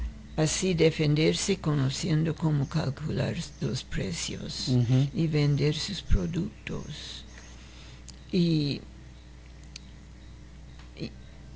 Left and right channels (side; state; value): both; identical; correlation 1.00